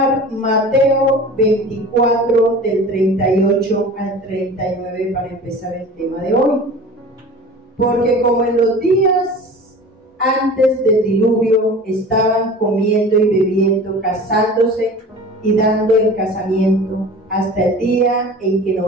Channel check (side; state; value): both; normal; correlation 0.39